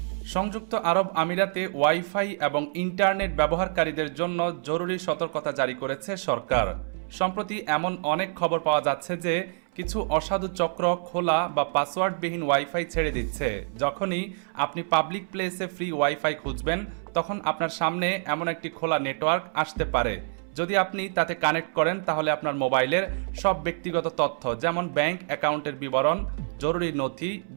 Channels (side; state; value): left; silent; 60 dB below the other